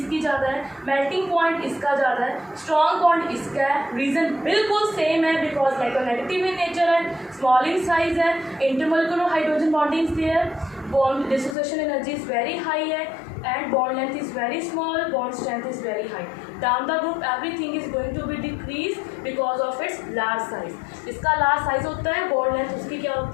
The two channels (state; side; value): drops out; right; at 11.6 s